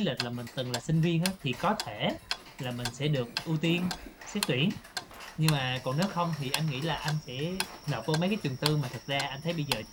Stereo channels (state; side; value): identical; both; correlation 1.00